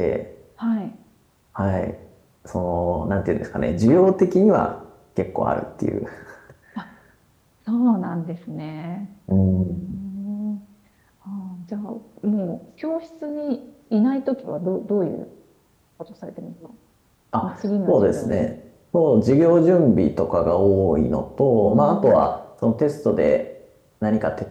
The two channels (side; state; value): both; identical; correlation 1.00